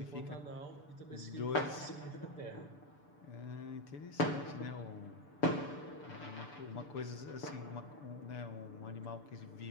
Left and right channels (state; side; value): late; right; 6.8 ms